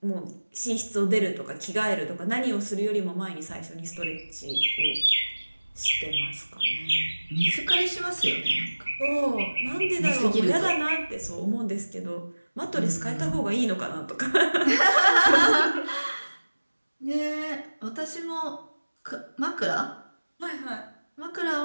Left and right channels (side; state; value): both; inverted; correlation -1.00